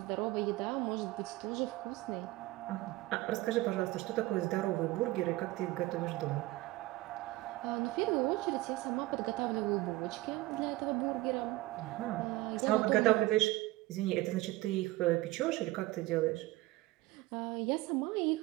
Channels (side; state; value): left; quieter; 19.0 dB